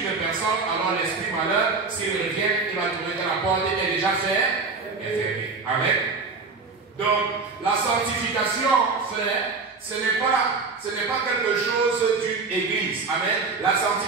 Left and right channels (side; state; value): left; quieter; 4.4 dB